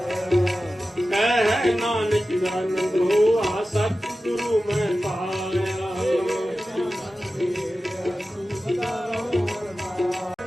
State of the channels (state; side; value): normal; both; correlation 0.94